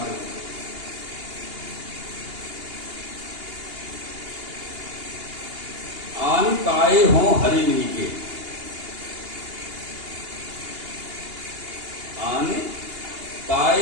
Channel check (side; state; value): left; late; 2.8 ms